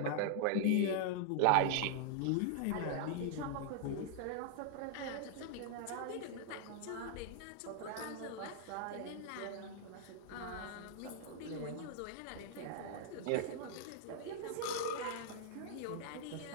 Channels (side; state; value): both; different; correlation -0.01